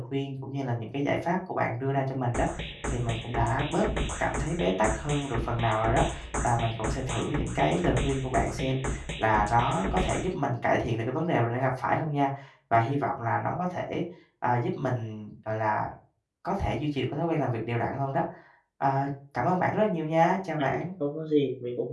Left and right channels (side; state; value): both; identical; correlation 1.00